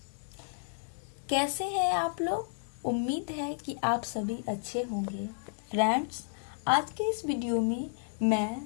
कैसे हैं आप लोग? उम्मीद है कि आप सभी अच्छे होंगे। फ्रेंड्स, आज के इस वीडियो में मैं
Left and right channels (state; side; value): silent; right; digital silence